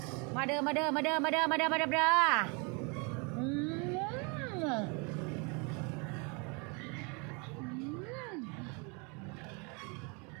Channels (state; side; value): quieter; left; 32.6 dB